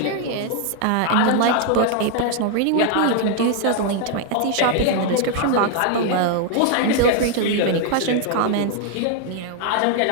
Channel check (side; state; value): both; different; correlation 0.00